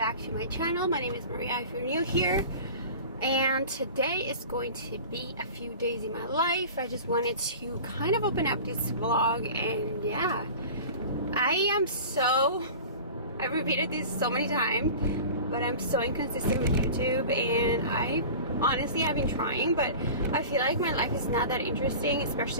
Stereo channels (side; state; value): both; inverted; correlation -0.37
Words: to my channel. My name is Maria if you're new here, and today is going to be a few days in my life. I just wanted to kind of open up this vlog, and yeah, I've repeated this so many times, but I'm so inconsistent with YouTube, and I've been trying, but I feel like my life is not that interesting,